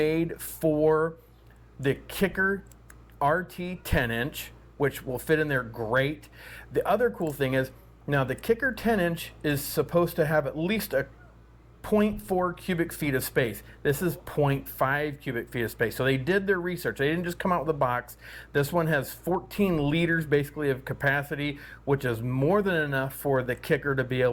for the Kicker RT 10-inch, which will fit in there great. The other cool thing is, now the Kicker 10-inch is supposed to have at least a 0.4 cubic feet of space. This is 0.5 cubic feet of space. So they did their research. They didn't just come out with a box. This one has 14 liters basically of capacity, which is more than enough for the Kicker to be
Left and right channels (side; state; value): both; identical; correlation 1.00